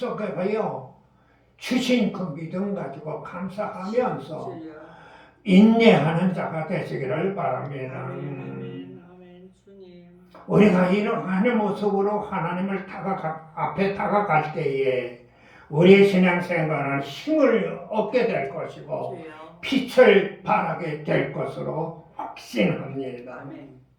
주신 그 믿음 가지고 감사하면서 인내하는 자가 되시기를 바랍니다. 우리가 이러한 모습으로 하나님을 앞에 다가갈 때에 우리의 신앙생활은 힘을 얻게 될 것이고 빛을 발하게 될 것으로 확신합니다.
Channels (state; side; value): identical; both; correlation 1.00